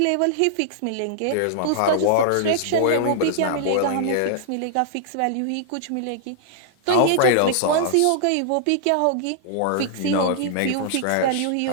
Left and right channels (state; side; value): different; both; correlation -0.01